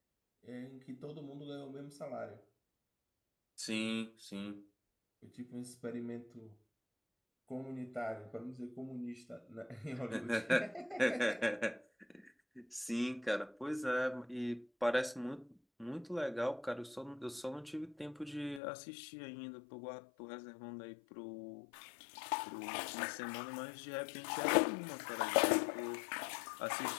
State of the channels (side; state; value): right; drops out; at 18.6 s